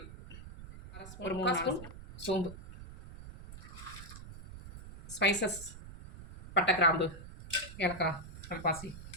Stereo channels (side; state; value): right; noise; rumble, 14 dB below the sound